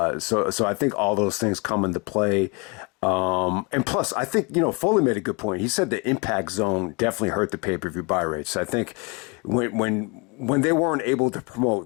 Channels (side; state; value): right; quieter; 30.1 dB